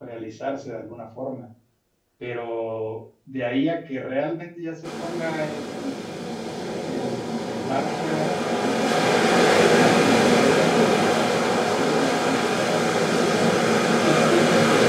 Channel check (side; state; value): both; identical; correlation 1.00